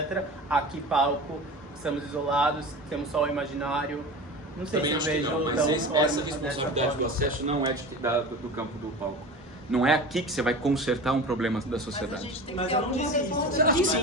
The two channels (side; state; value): both; normal; correlation 0.33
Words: Aqui, palco, estamos isolados, temos só o imaginário. Não sei também se eu vejo... Não, mas essa responsabilidade do acesso não é do campo do palco. Não é aqui que você vai consertar um problema da sociedade. Mas eu não disse isso. Eu